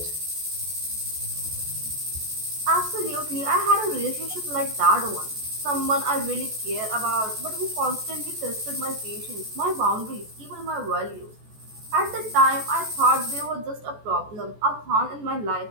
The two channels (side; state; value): left; late; 14 ms